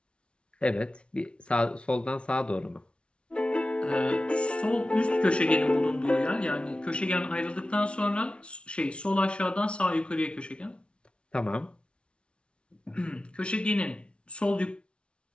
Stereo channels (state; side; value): late; right; 0.059 ms